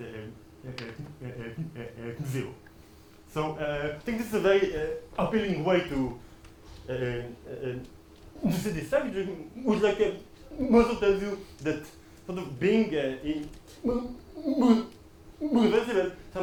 0. So I think this is a very appealing way to see this structure, which also tells you that sort of being reversible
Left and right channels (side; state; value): both; identical; correlation 1.00